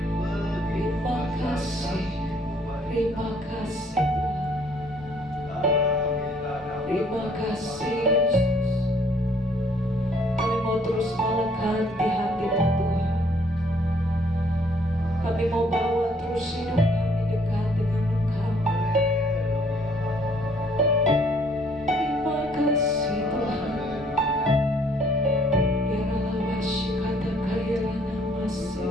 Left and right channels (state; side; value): normal; both; correlation 0.62